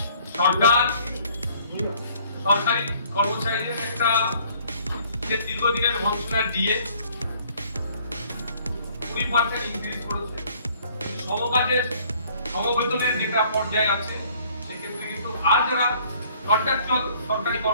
সরকার সরকারি কর্মচারীদের একটা যে দীর্ঘদিনের বঞ্চনার ডিএ 20% ইনক্রিজ করেছে। সমকাজের সমবেতনের যেটা পর্যায়ে আছে সেক্ষেত্রে কিন্তু আর যারা কন্ট্রাকচুয়াল সরকারি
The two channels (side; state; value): both; inverted; correlation -0.58